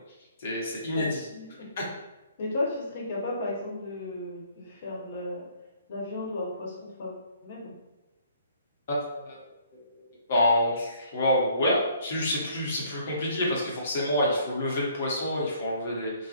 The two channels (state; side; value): inverted; both; correlation -0.60